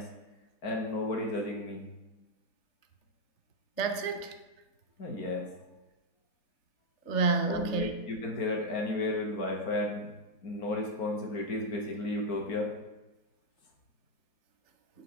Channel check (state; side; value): late; right; 3.4 ms